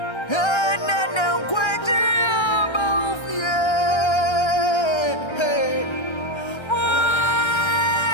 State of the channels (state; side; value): late; right; 1.3 ms